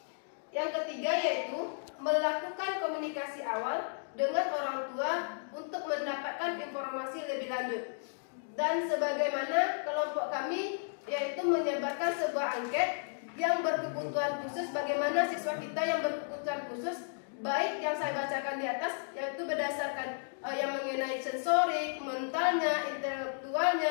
Yang ketiga yaitu melakukan komunikasi awal dengan orang tua untuk mendapatkan informasi lebih lanjut. Dan sebagaimana kelompok kami yaitu menyebarkan sebuah angket yang berkebutuhan khusus, bagaimana siswa kita yang berkebutuhan khusus, baik yang saya bacakan di atas yaitu berdasarkan yang mengenai sensorik, mentalnya,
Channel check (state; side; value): silent; right; digital silence